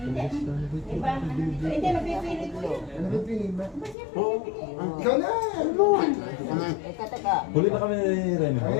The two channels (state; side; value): drops out; right; at 4.0 s